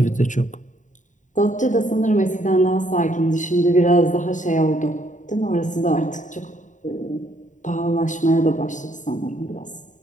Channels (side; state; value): right; late; 0.36 ms